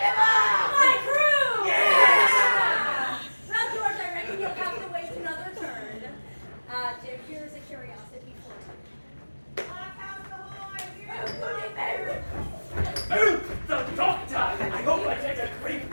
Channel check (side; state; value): both; inverted; correlation -1.00